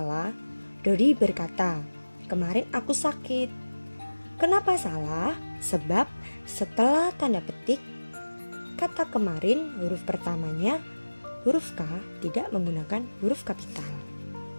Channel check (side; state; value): both; inverted; correlation -1.00